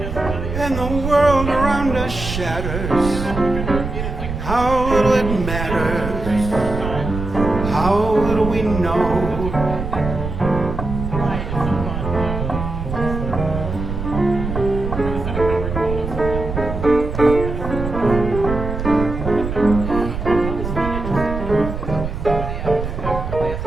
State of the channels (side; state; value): right; noise; rumble, 5 dB below the sound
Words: and the world around us shatters, how little it matters, how little we know.